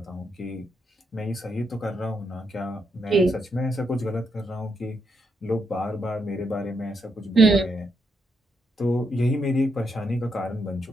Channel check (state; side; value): normal; both; correlation 0.80